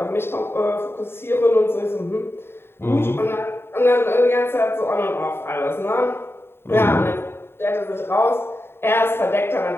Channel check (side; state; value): right; late; 0.11 ms